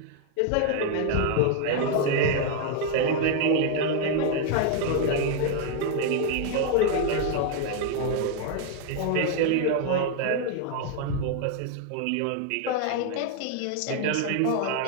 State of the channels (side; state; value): both; different; correlation 0.00